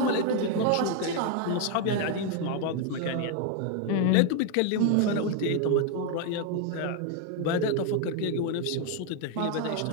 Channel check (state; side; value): different; both; correlation 0.01